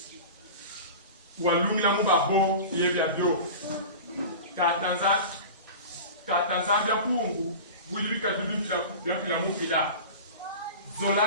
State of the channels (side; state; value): both; inverted; correlation -0.33